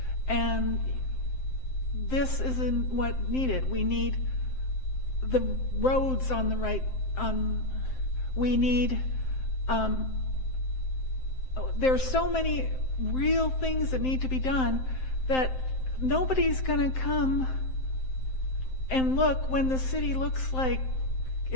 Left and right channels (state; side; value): late; right; 7.7 ms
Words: and this isn't what needed. We need the roads on the right, we need, there's so many real things that need to be done, that nobody's going to come and look when the city looks like